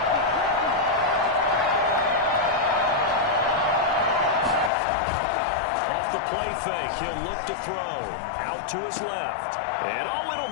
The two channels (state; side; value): drops out; right; at 4.7 s